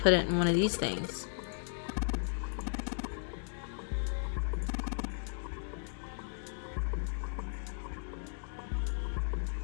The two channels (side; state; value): right; silent; digital silence